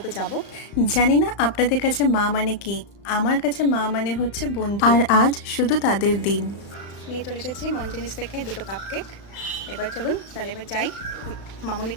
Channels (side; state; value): right; late; 36 ms